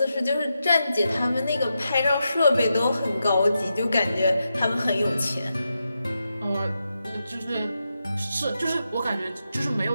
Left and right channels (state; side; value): inverted; both; correlation -0.87